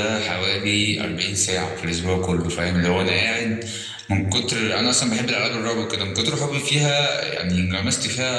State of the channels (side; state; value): both; identical; correlation 1.00